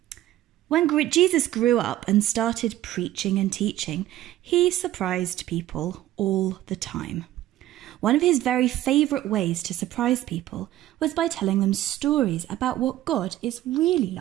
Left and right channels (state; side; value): quieter; left; 14.1 dB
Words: When Jesus grew up and started preaching and teaching, he surprised people all the time. One of his very favourite ways to surprise people was by telling them stories about what God is really